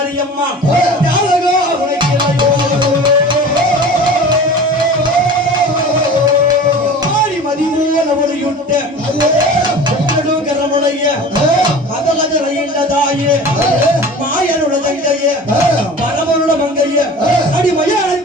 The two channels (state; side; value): normal; both; correlation 0.39